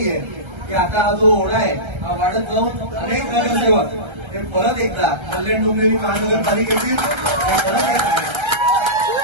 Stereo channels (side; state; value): left; late; 1.3 ms